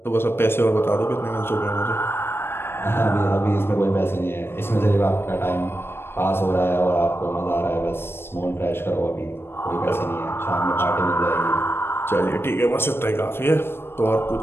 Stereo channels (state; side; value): late; right; 0.11 ms